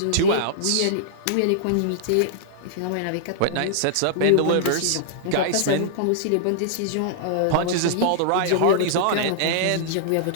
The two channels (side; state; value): both; different; correlation -0.01